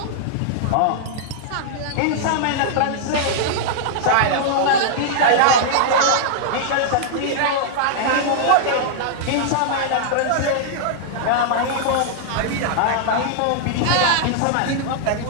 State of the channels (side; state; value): both; different; correlation -0.01